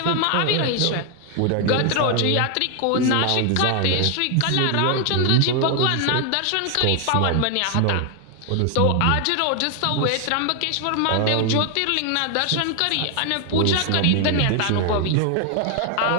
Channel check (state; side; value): different; both; correlation 0.00